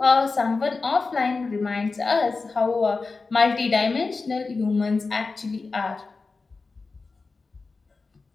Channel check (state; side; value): quieter; right; 4.1 dB